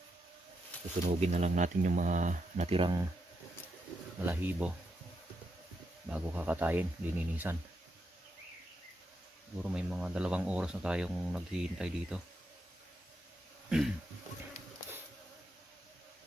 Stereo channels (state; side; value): normal; both; correlation 0.82